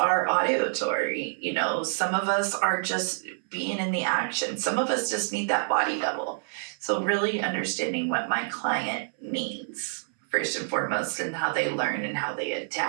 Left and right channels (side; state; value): left; silent; 60 dB below the other